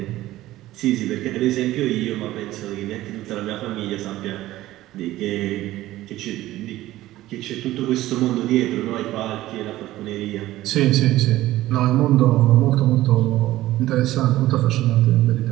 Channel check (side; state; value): left; quieter; 15.7 dB